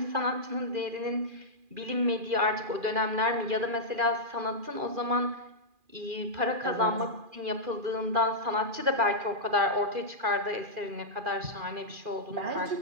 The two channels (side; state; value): left; late; 2.4 ms